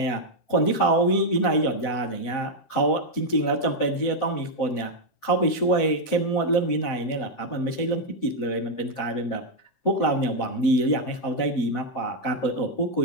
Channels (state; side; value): late; right; 7.5 ms